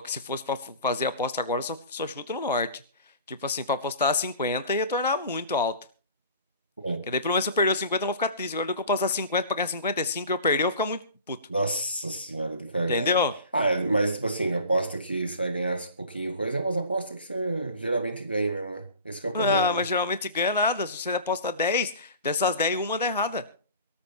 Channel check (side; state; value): both; inverted; correlation -0.40